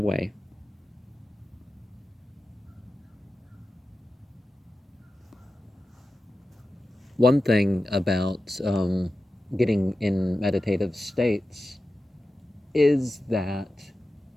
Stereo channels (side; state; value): both; normal; correlation 0.93